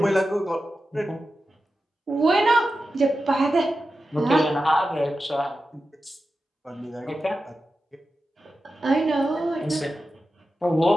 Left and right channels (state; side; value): normal; both; correlation 0.92